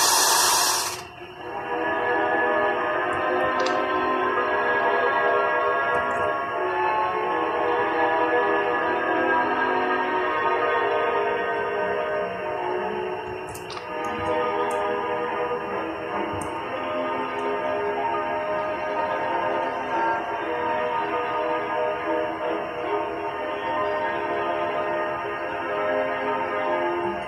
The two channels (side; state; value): both; identical; correlation 1.00